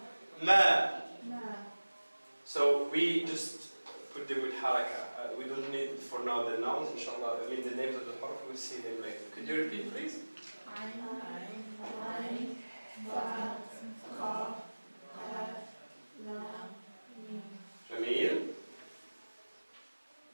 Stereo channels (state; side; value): inverted; both; correlation -1.00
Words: ma. So we just put them with haraka. We don't need for now the nouns, inshallah. I mean the names of the harf, we'll see them later. Could you repeat, please? Jamil.